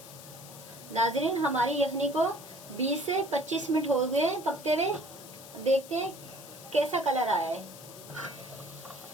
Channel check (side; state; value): left; noise; hiss, 16 dB below the sound